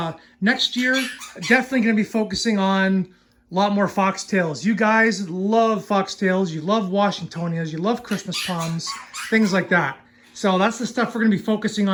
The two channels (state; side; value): identical; both; correlation 1.00